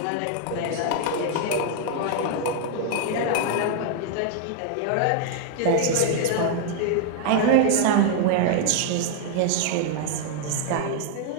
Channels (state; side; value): different; both; correlation 0.00